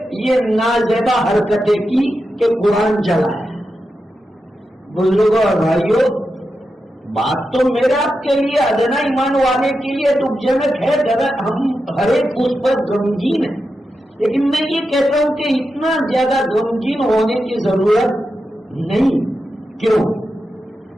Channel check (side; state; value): both; normal; correlation 0.89